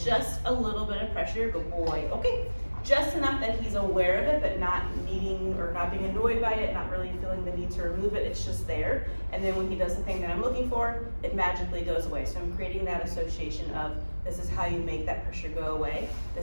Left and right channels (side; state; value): both; inverted; correlation -1.00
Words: just a little bit of pressure, good boy. Okay, just enough that he's aware of it, but not needing or not being annoyed by it, not really feeling the need to remove it. It's just there. And then when he does the thing that I'm looking for, it magically goes away. So I'm creating that association of this is how you make that pressure go away.